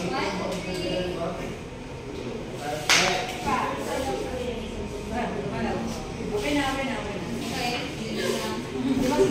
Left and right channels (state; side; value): identical; both; correlation 1.00